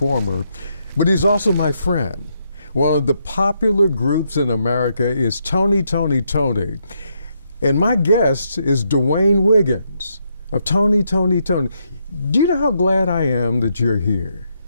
but he's also my friend. One of the popular groups in America is Toni. And my guest is Dwayne Wiggins of Toni. Do you know how glad I am that you're here?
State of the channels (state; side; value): inverted; both; correlation -0.77